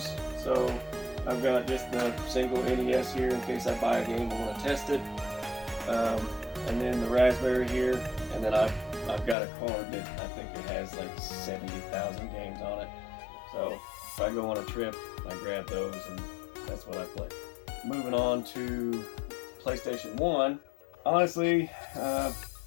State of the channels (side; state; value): right; drops out; at 9.3 s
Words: So I've got just the single NES here in case I buy a game and want to test it. And then the Raspberry here. And then I've got a card that I think it has like 70,000 games on it. So if I go on a trip, I grab those and that's what I play. Moving on to PlayStation 1. Honestly,